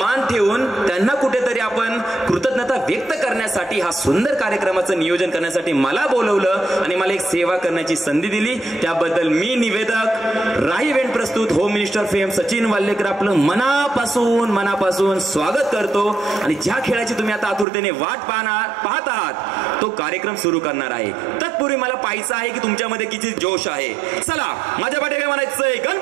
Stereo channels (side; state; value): left; drops out; at 17.7 s